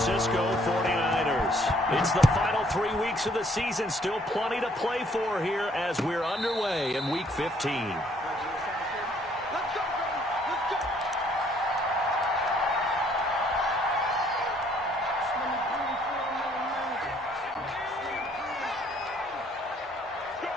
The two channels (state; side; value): normal; both; correlation 0.64